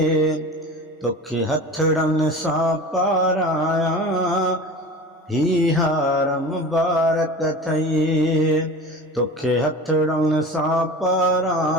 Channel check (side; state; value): both; normal; correlation 0.35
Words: तोखे हथड़न सां पाराया ही हार मुबारक थई। तोखे हथड़न सां